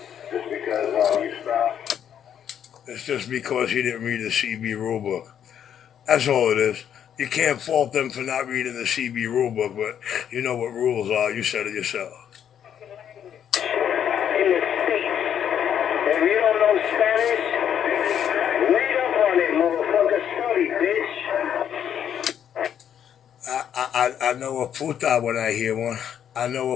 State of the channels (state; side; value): quieter; right; 9.2 dB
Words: Just because you stopped. It's just because he didn't read the CB rulebook. That's all it is. You can't fault them for not reading the CB rulebook, but you know what rules are. You said it yourself. In the States, if you don't know Spanish, read up on it, motherfucker. Study, bitch. I know a puta when I hear one. I know